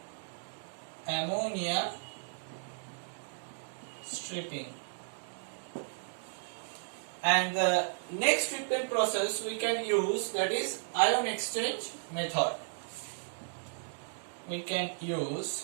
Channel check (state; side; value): silent; left; digital silence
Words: Ammonia stripping. And the next treatment process we can use, that is ion exchange method. We can use